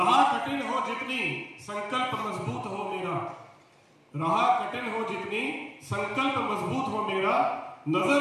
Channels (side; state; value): both; identical; correlation 1.00